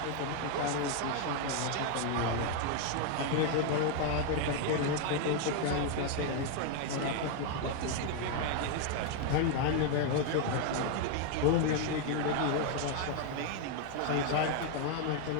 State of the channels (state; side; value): different; both; correlation 0.01